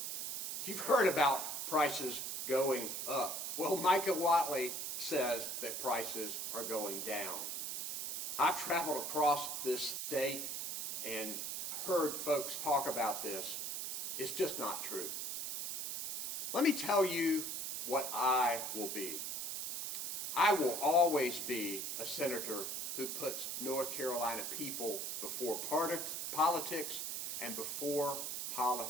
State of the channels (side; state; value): right; noise; hiss, 3 dB below the sound